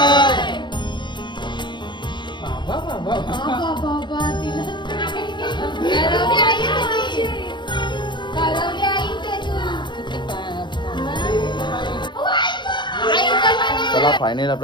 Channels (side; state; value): right; late; 0.22 ms